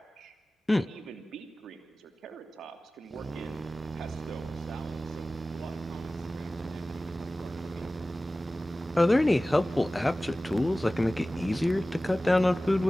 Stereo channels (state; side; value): normal; both; correlation 0.97